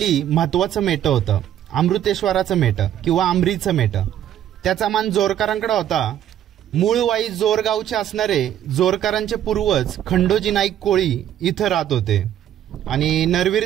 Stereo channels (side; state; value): left; quieter; 11.0 dB